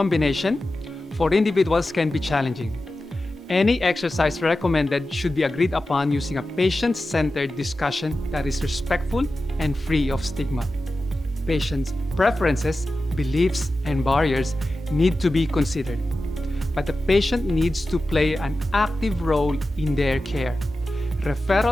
for individuals can be challenging. Any exercise recommended should be agreed upon using a patient-centered discussion that is respectful and free of stigma. Patients' preferences, beliefs, and barriers need to be considered, but the patient needs to play an active role in their care.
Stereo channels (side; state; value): both; normal; correlation 0.93